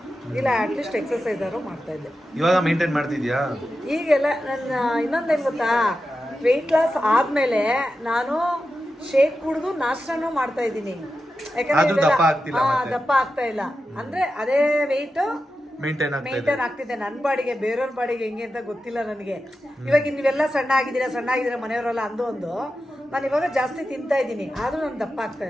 ಇಲ್ಲ ಅಟ್ಲೀಸ್ಟ್ ಎಕ್ಸಸೈಸ್ ಆದ್ರೂ ಮಾಡ್ತಾ ಇದ್ದೆ. ಇವಾಗ ಮೇಂಟೈನ್ ಮಾಡ್ತಿದ್ಯಾ? ಈಗೆಲ್ಲ ನನ್ನ ಇನ್ನೊಂದೇನು ಗೊತ್ತಾ, ವೆಯ್ಟ್ ಲಾಸ್ ಆದ್ಮೇಲೆ ನಾನು ಶೇಕ್ ಕುಡಿದು ನಾಷ್ಟನೂ ಮಾಡ್ತಾ ಇದ್ದೀನಿ. ಯಾಕಂದ್ರೆ ದಪ್ಪ ಆಗ್ತಾ ಇಲ್ಲ, ಅಂದ್ರೆ ಅದೇ ವೆಯ್ಟ್ ಮೇಂಟೈನ್ ಆಗ್ತಿದೆ ನನ್ನ ಬಾಡಿಗೆ. ಬೇರೆಯವ್ರ ಬಾಡಿಗೆ ಹೆಂಗೆ ಅಂತ ಗೊತ್ತಿಲ್ಲ ನನಗೆ. ಇವಾಗ ನೀವೆಲ್ಲ ಸಣ್ಣ ಆಗಿದ್ದೀರಾ ಮನೆಯವರೆಲ್ಲ ಒಂದು ನಾನು ಇವಾಗ ಜಾಸ್ತಿ ತಿಂತಾ ಇದ್ದೀನಿ, ಆದ್ರೂ ನಾನು ದಪ್ಪ ಆಗ್ತಾ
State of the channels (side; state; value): both; normal; correlation 0.91